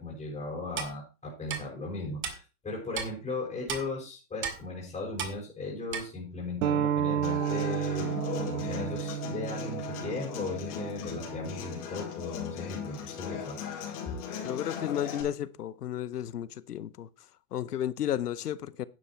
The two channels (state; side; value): normal; both; correlation 0.19